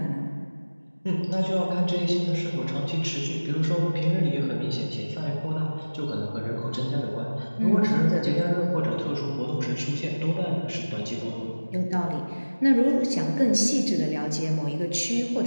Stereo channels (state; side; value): inverted; both; correlation -1.00